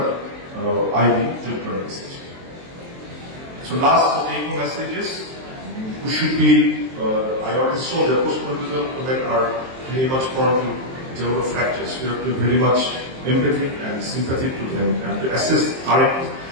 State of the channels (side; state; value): left; late; 23 ms